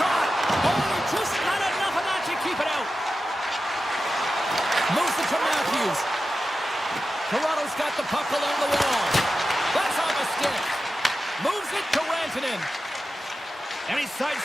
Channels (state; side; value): normal; both; correlation 0.92